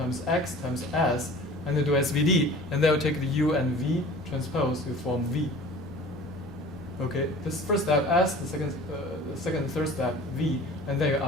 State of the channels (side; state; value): both; normal; correlation 0.43